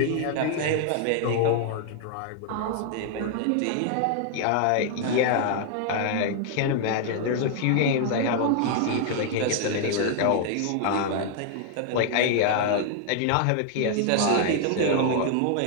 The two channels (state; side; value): different; both; correlation 0.00